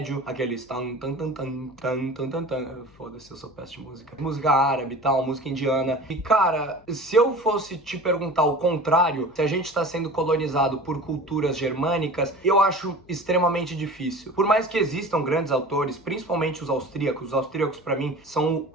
aqueles tan tan tan tan tan tan tan tan, foda-se, eu sou péssimo de música, música árabe e tal, música indiana. E cara, se eu fosse te perguntar o contrário, se a gente tá sendo colonizado por culturas germânicas, eu acho extremamente difícil. Por mais que existam grandes autores, principalmente os austríacos pra mim são o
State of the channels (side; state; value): left; noise; hum, 28 dB below the sound